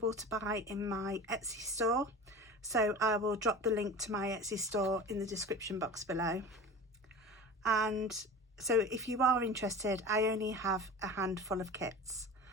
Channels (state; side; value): normal; both; correlation 0.35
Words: to buy in my Etsy store, so I will drop the link to my Etsy store in the description box below. And so if you are interested, I only have a handful of kits.